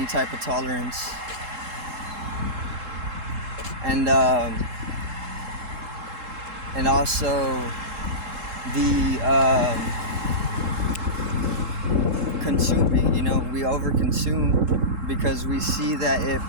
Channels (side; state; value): left; late; 3.7 ms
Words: type of tolerance, and also the consuming, we overconsume because we see that it